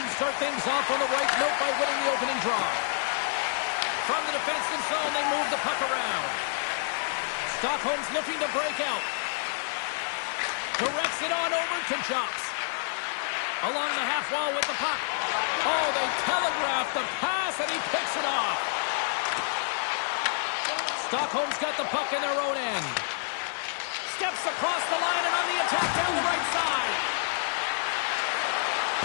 start things off on the right note by winning the opening draw. From the defensive zone, they move the puck around. Stockholm's looking to break out. Directs it on over to Jocks. Along the half wall with the puck. Oh, they telegraph the pass, and he picks it off. Stockholm's got the puck in their own end. Steps across the line and on the attack down the right side.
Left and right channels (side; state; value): right; silent; 59 dB below the other